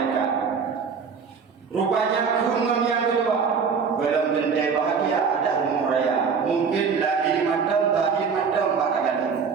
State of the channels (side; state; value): left; quieter; 5.9 dB